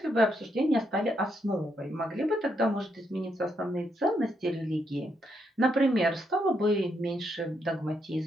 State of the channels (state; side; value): normal; both; correlation 0.78